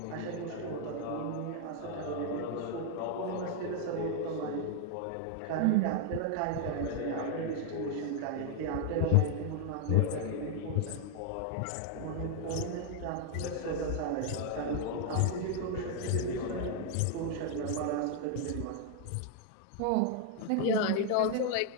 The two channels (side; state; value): both; different; correlation 0.00